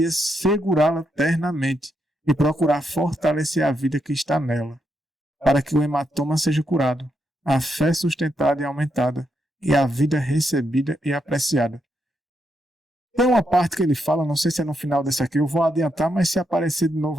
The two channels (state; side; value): normal; both; correlation 0.81